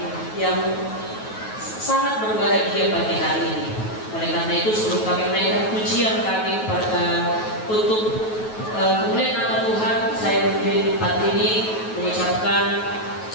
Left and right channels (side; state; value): right; late; 9.3 ms